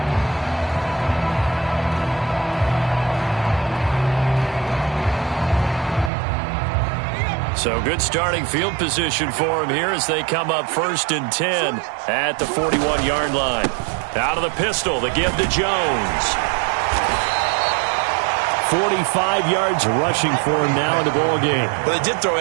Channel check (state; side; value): drops out; left; at 6.1 s